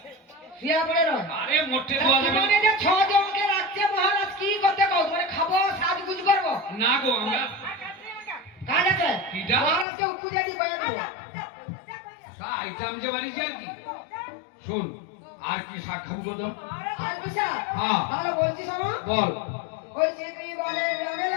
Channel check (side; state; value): right; drops out; at 9.9 s